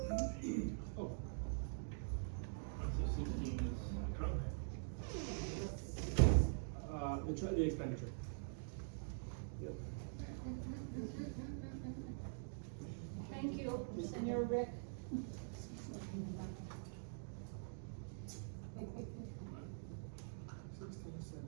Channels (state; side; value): silent; left; digital silence